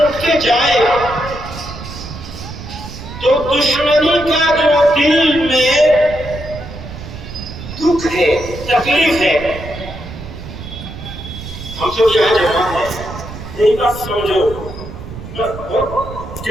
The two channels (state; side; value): noise; right; rumble, 12 dB below the sound